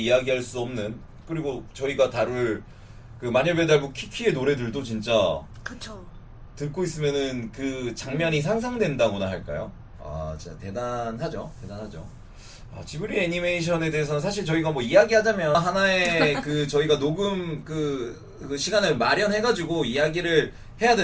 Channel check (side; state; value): both; identical; correlation 1.00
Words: 수 없는, 그리고 저희가 다룰 그 마녀배달부 키키의 노래들도 진짜 그쵸. 듣고 있으면은 그 장면이 상상된다고나 할까요? 아 진짜 대단하죠. 지브리 애니메이션에 대해서는 사실 저희가 뭐 이야기하자면 하나의 그 저희가 녹음 그 시간을 마련해가지고 이야기를 해야